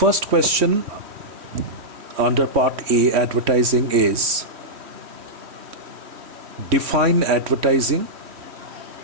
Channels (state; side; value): late; left; 3.1 ms